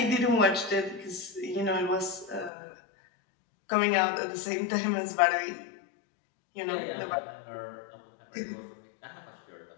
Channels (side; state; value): right; drops out; at 2.5 s